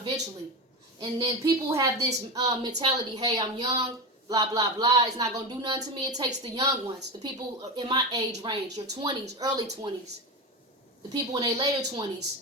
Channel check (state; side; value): normal; both; correlation 0.19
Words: And then people have this mentality, hey, I'm young, blah, blah, blah. It's not going to do nothing to me. It takes the young ones, the people in my age range, your 20s, early 20s. The people in their later